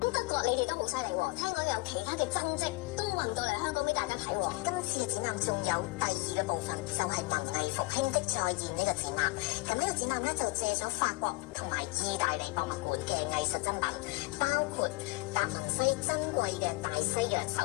德國你哋都好犀利喎，聽講有其他嘅真跡都運到嚟香港俾大家睇喎。今次嘅展覽仲有第2個部分，就係文藝復興的再現呢個展覽。咁呢個展覽咧就借咗法國同埋意大利博物館嘅藝術珍品，包括達文西珍貴嘅大西洋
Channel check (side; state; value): right; quieter; 24.7 dB